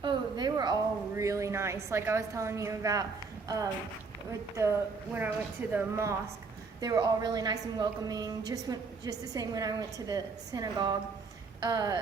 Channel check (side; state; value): left; quieter; 4.5 dB